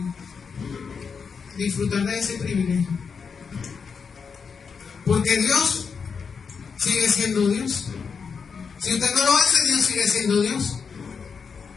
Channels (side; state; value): right; quieter; 5.9 dB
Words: disfrutar de ese privilegio. Porque Dios sigue siendo Dios. Si usted no lo hace, Dios sigue siendo Dios.